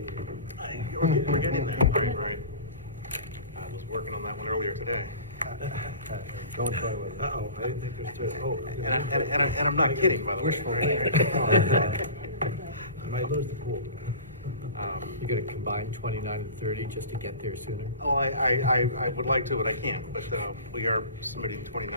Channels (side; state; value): both; inverted; correlation -0.37